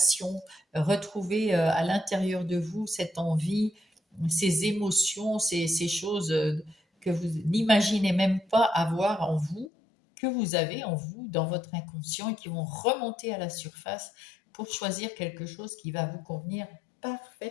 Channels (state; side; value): drops out; right; at 9.7 s